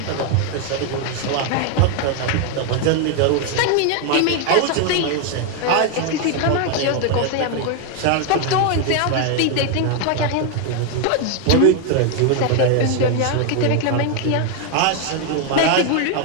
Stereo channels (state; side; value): different; both; correlation 0.01